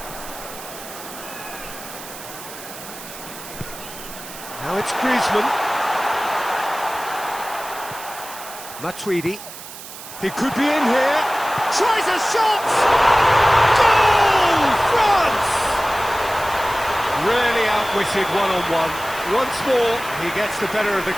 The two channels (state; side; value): noise; right; hiss, 14 dB below the sound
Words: Now it's Griezmann. Matuidi. He could be in here. Tries a shot! Goal! France! Really outwitted one-on-one. Once more, he gets the better of the